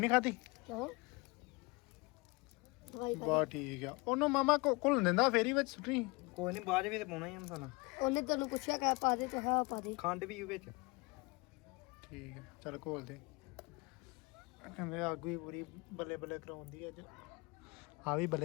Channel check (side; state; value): right; quieter; 26.1 dB